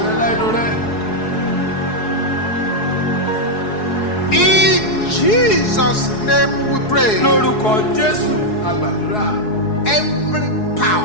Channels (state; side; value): late; right; 4.7 ms